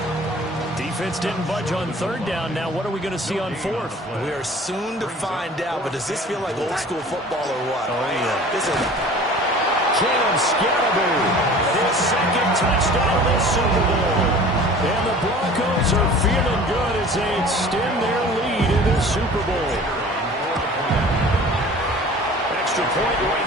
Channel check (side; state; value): both; normal; correlation 0.44